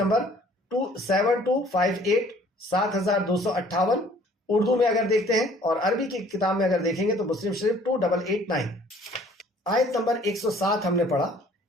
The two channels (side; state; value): both; normal; correlation 0.55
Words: 7258 7258، اردو میں اگر دیکھتے ہیں اور عربی کی کتاب میں اگر دیکھیں گے تو مسلم شریف 2889۔ آیت نمبر 107 ہم نے پڑھا۔